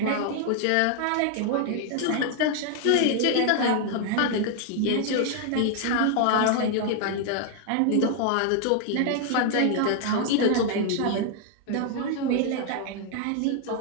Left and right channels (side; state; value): both; different; correlation 0.00